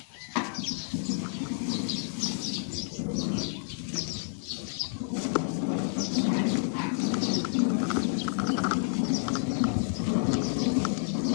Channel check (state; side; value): silent; right; 58 dB below the other